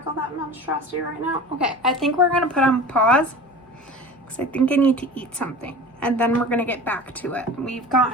that monstrosity right now? Okay, I think we're gonna put on pause because I think I need to eat something, and then we're gonna get back to it. We've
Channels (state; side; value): normal; both; correlation 0.36